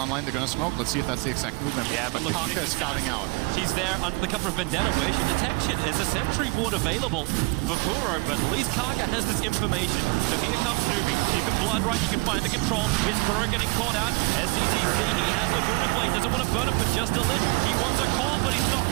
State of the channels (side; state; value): left; quieter; 27.9 dB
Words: they're going to smoke. Let's see if that's the exact movement. Yeah, but look, Kaka is scouting out. He's there under the cover of Vendetta. Where's your detection? Is a sentry board available for Kuro, but at least Kaka has this information. So here comes Newbee. You can blood right, you can find the control. Is Kuro getting caught out? SCCC, he has Laguna Blade, doesn't want to burn it for just a lich. He wants a call, but he's not